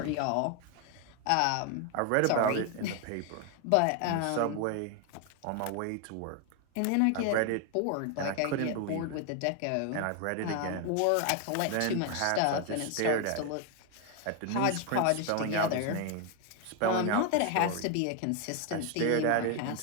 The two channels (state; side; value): different; both; correlation 0.01